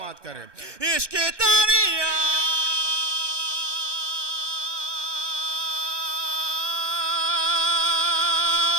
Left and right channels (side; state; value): left; late; 1.2 ms